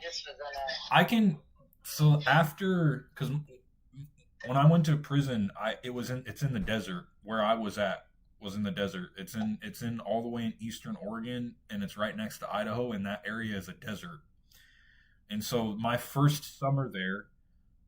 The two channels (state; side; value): identical; both; correlation 1.00